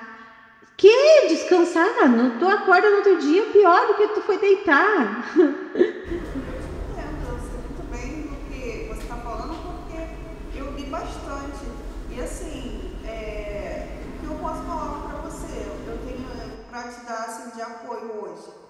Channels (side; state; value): both; identical; correlation 1.00